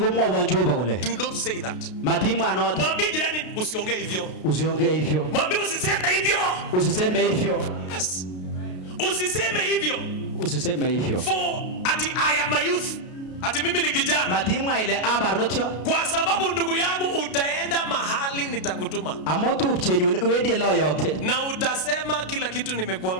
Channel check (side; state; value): right; late; 33 ms